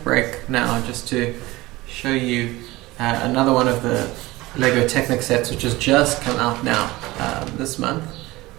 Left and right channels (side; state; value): left; quieter; 19.8 dB